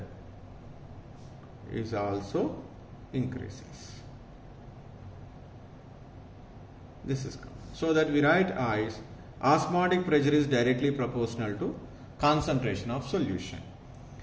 is also increases. This is so that we write as osmotic pressure is directly proportional to concentration of solution.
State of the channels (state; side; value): identical; both; correlation 1.00